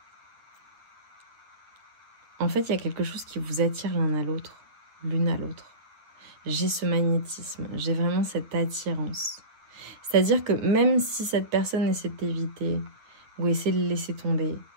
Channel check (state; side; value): late; left; 9.2 ms